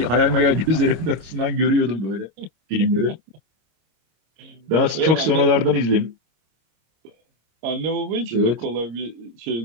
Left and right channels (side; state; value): left; late; 26 ms